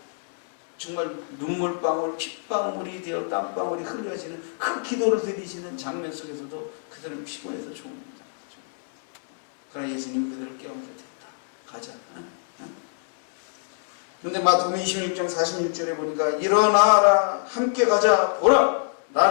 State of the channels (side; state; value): right; silent; 61 dB below the other